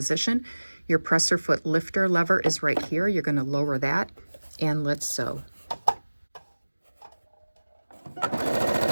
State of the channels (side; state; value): both; inverted; correlation -1.00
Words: Your presser foot lifter lever is right here. You're going to lower that, and let's sew.